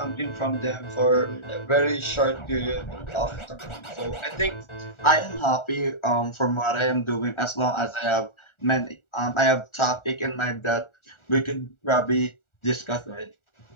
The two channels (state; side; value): late; right; 1.4 ms